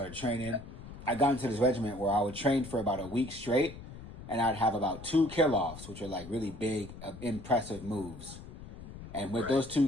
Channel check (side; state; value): left; noise; rumble, 14 dB below the sound